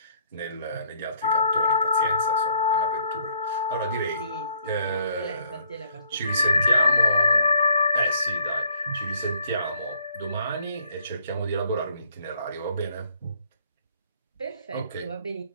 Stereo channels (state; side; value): inverted; both; correlation -0.66